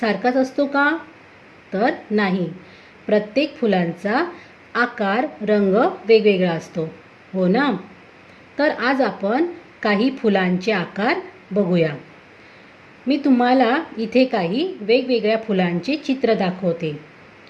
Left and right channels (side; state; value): both; identical; correlation 1.00